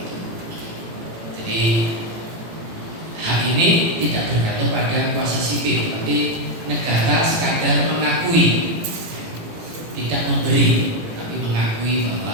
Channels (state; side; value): late; left; 18 ms